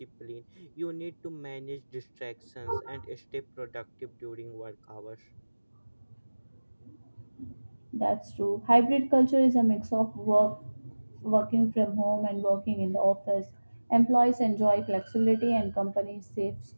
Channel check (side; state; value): both; inverted; correlation -1.00